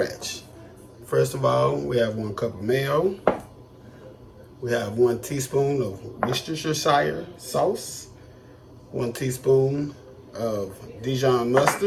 First of all, we have 1 cup of mayo. We have 1 teaspoon of Worcestershire sauce, 1 teaspoon of Dijon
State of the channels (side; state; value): both; identical; correlation 1.00